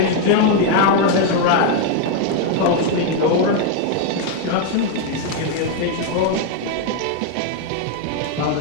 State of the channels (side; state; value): both; different; correlation 0.01